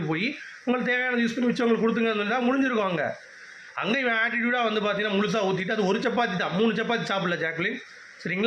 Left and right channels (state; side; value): identical; both; correlation 1.00